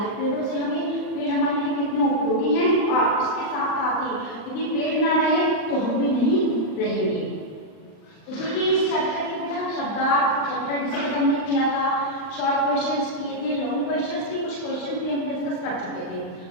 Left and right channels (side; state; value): right; late; 39 ms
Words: पेड़ों से पेड़ हमारे लिए कितने उपयोगी हैं और इसके साथ साथ ही यदि पेड़ ना रहे तो हम भी नहीं रहेंगे। तो देखिए, इस चैप्टर के बिना शब्दार्थ चैप्टर डिस्कस हमने किया था, शॉर्ट क्वेश्चंस किए थे, लॉन्ग क्वेश्चंस की कुछ क्वेश्चन भी हम डिस्कस कर चुके थे।